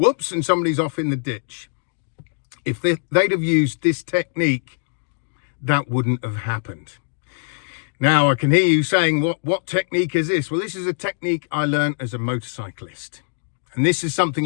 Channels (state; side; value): silent; right; digital silence